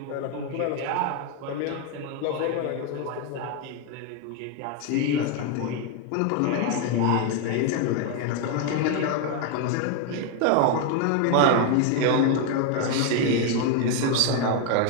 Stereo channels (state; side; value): different; both; correlation 0.01